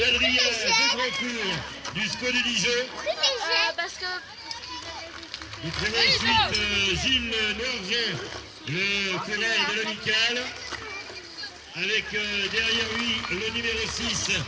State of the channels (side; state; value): both; identical; correlation 1.00